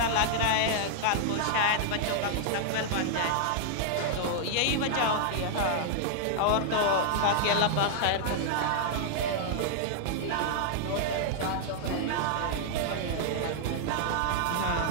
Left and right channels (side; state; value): both; different; correlation -0.01